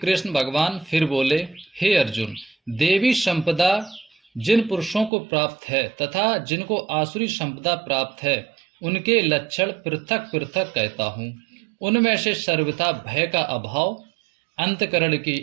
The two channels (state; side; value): drops out; left; at 5.1 s